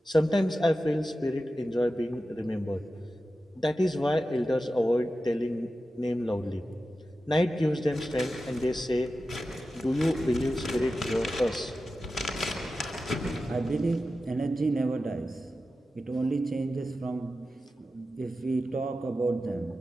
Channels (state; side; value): normal; both; correlation 0.92